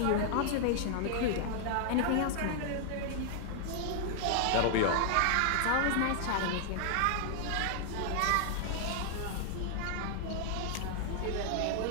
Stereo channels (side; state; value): both; different; correlation -0.01